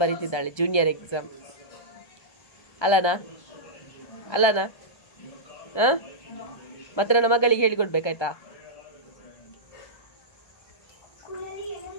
ಬರೀತಿದ್ದಾಳೆ, ಜೂನಿಯರ್ ಎಕ್ಸಾಮ್. ಅಲ್ಲನಾ ಮತ್ತೆ ನನ್ನ ಮಗಳಿಗೆ ಹೇಳಿಕೊಡ್ಬೇಕಾಯ್ತಾ?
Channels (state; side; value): late; right; 1.2 ms